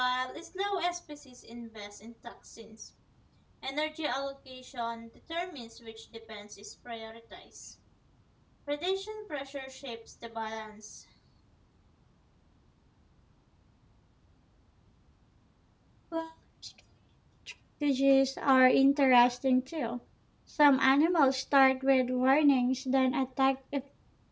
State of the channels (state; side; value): identical; both; correlation 1.00